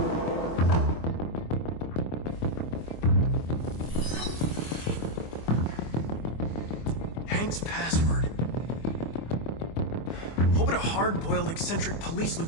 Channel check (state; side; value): late; right; 24 ms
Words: Hank's password. What would a hard-boiled, eccentric police